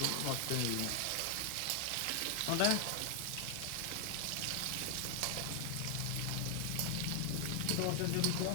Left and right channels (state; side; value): different; both; correlation 0.00